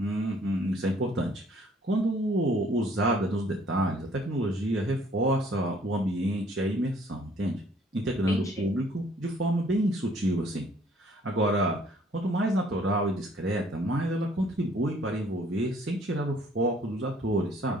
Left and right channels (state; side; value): normal; both; correlation 0.60